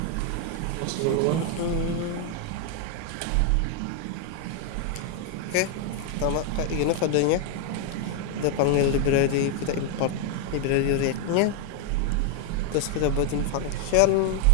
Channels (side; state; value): both; different; correlation 0.00